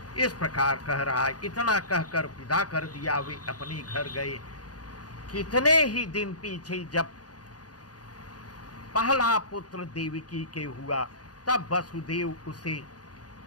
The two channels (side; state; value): right; late; 0.68 ms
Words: इस प्रकार कह रहा है। इतना कहकर विदा कर दिया। वे अपने घर गए। कितने ही दिन पीछे जब पहला पुत्र देवकी के हुआ, तब वसुदेव उसे